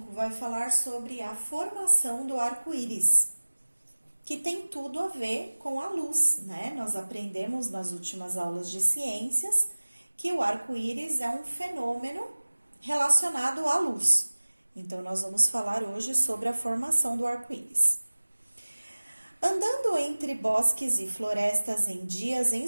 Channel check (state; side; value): inverted; both; correlation -1.00